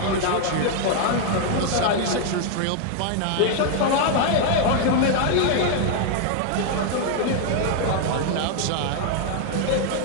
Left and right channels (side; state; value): both; different; correlation 0.00